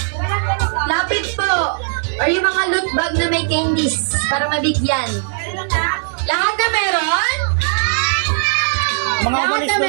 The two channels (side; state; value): left; silent; digital silence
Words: Lapit po. Or yung mga loot bag na may candies para mabigyan. Lahat na meron? Mga Lahat umalis na na